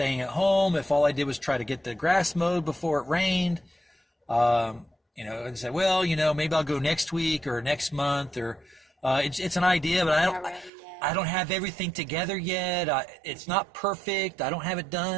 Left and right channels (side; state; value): left; drops out; at 10.7 s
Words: at home, if all I did was try to get the grass mowed before it rained, and say, well, maybe I'll go next week or next month, or it's an idea, but I don't have everything together yet. It's not perfect. I don't have it